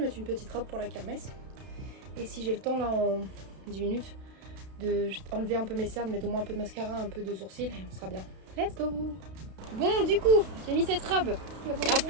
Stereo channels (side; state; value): left; late; 32 ms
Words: mettre une petite robe pour la kermesse. Et si j'ai le temps là en 10 minutes de enlever un peu mes cernes, mettre au moins un peu de mascara, un peu de sourcils et on sera bien. Let's go. Bon du coup, j'ai mis cette robe. Et